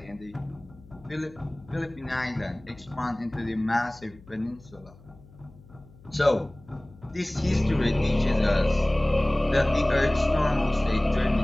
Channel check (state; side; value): noise; left; hum, 23 dB below the sound